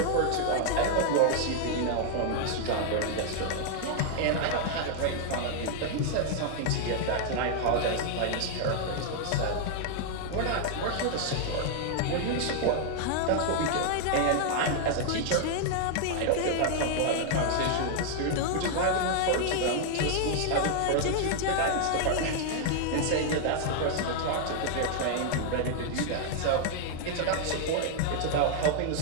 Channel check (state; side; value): different; both; correlation 0.00